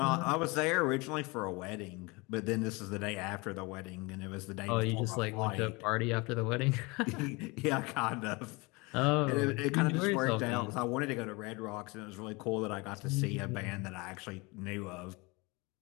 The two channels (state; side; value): quieter; right; 26.1 dB